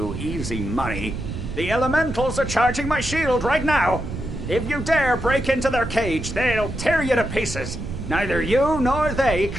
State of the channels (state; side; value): noise; right; rumble, 7 dB below the sound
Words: easy money. The elementals are charging my shield right now! If you dare break into their cage, they'll tear you to pieces. Neither you nor they